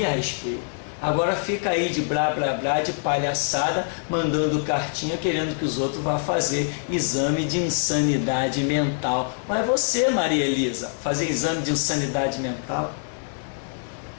respeito. Agora fica aí de blá blá blá, de palhaçada, mandando cartinha querendo que os outros vá fazer exame de insanidade mental. Mas você, Maria Elisa, fazer exame de insanidade mental?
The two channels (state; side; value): silent; right; digital silence